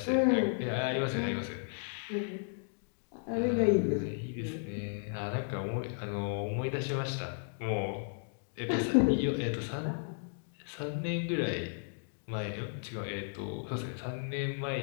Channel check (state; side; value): silent; right; digital silence